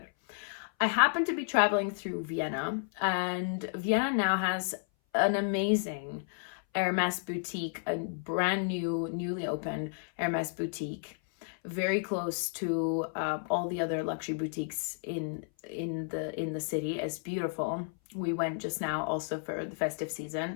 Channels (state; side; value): silent; right; 56 dB below the other